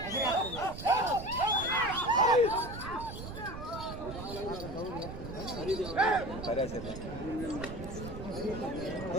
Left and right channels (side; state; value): right; noise; rumble, 9 dB below the sound